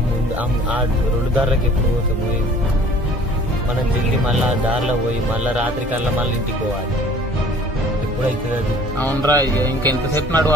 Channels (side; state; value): both; normal; correlation 0.51